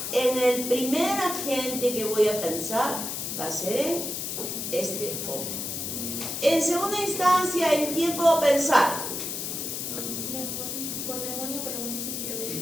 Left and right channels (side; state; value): left; noise; hiss, 4 dB below the sound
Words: en el primer agente que voy a pensar va a ser en este hongo. En segunda instancia, ¿en quién puedo pensar? Por neumonía por neumocitis